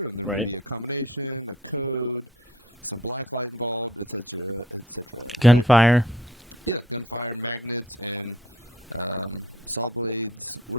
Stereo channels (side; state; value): both; normal; correlation 0.56